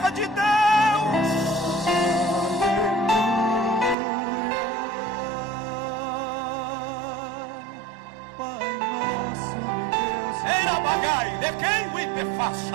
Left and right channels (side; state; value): left; drops out; at 4.0 s